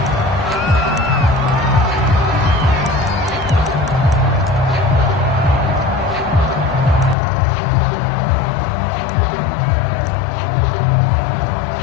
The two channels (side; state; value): right; drops out; at 7.2 s